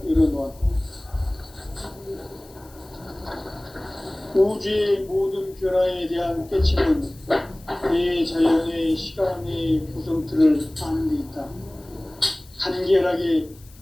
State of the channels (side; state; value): left; noise; hiss, 26 dB below the sound